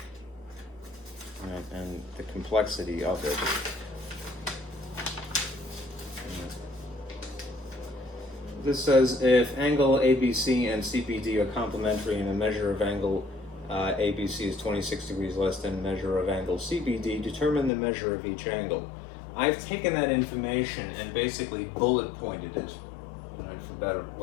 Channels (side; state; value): right; drops out; at 17.7 s